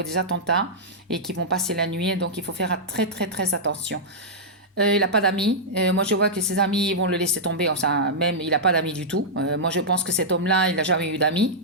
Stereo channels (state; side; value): normal; both; correlation -0.09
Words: des attentats et qui vont passer la nuit. Donc, il faut faire très, très, très attention. Il n'a pas d'amis. Moi, je vois que ses amis vont le laisser tomber. Enfin, même, il n'a pas d'amis du tout. Moi, je pense que cet homme-là, il n'a jamais eu d'amis,